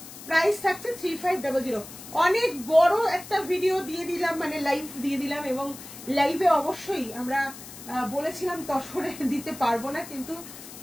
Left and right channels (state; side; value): noise; left; hiss, 15 dB below the sound